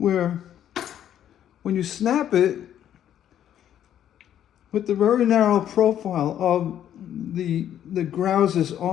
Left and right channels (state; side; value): quieter; right; 10.6 dB